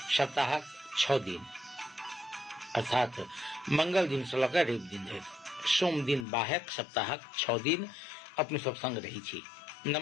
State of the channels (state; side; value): drops out; right; at 6.2 s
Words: सप्ताह 6 दिन अर्थात मंगल दिन से लक रवि दिन धरि सोम दिन बाहेक सप्ताह 6 दिन अपने सब संग रही छी।